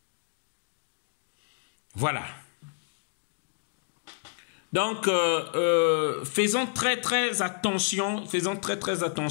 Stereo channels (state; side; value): silent; right; digital silence